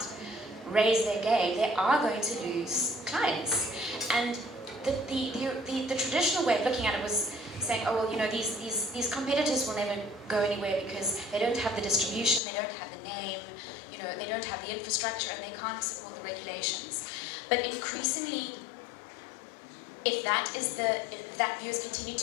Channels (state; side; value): drops out; right; at 12.4 s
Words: raise their game, they are going to lose clients. And the traditional way of looking at it was saying, oh well, these competitors will never go anywhere because they don't have the distribution, they don't have the name, they don't have the infrastructure, and they can't support the regulations. But increasingly, if that view is continued